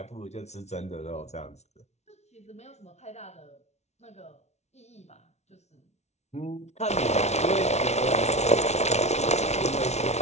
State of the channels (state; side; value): late; right; 0.32 ms